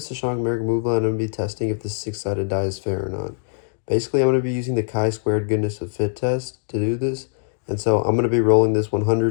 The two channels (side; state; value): right; silent; digital silence